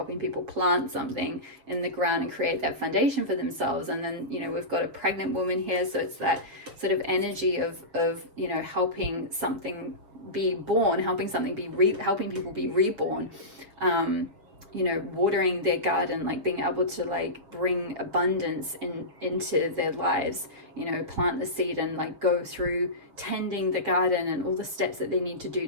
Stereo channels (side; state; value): left; late; 6.8 ms